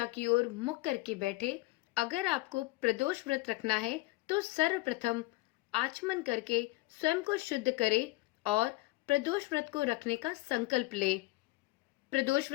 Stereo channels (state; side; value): quieter; right; 20.8 dB